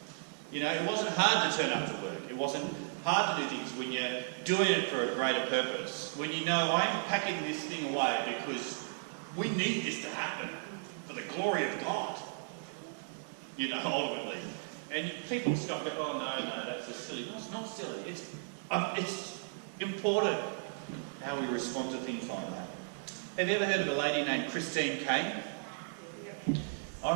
You know, it wasn't hard to turn up to work. It wasn't hard to do things when you're doing it for a greater purpose. When you know, I'm packing this thing away because we need this to happen for the glory of God. You know, ultimately. And people stop and go, oh no, that's just silly. No, it's not silly. It's important how we respond to things like that. Have you ever heard of a lady named Christine Caine? I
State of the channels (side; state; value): left; silent; digital silence